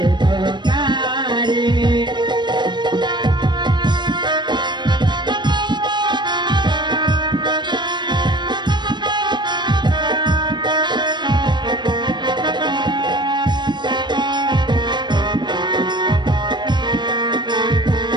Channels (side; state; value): left; late; 0.22 ms